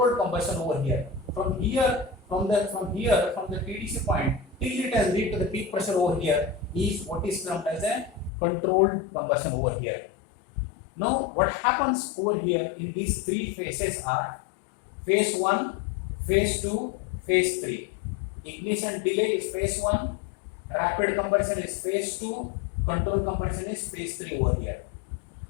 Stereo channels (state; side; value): drops out; right; at 8.3 s